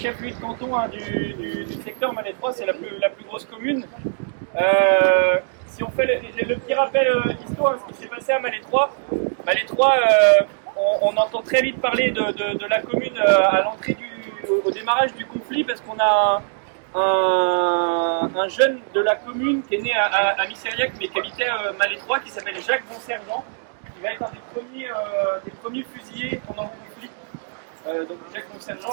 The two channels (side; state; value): left; silent; digital silence